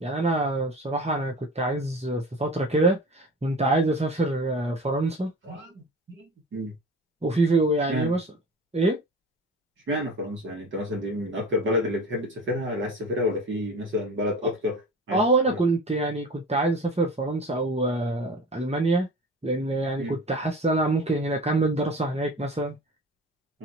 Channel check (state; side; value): normal; both; correlation 0.36